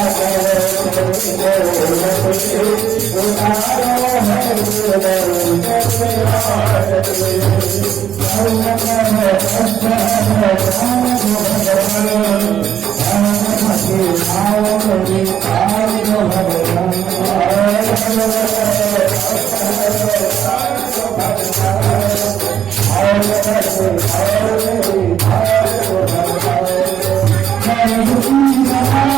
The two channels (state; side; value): quieter; left; 9.7 dB